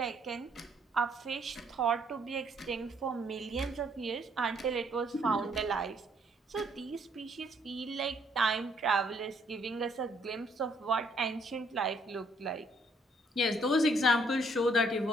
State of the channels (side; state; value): both; normal; correlation 0.67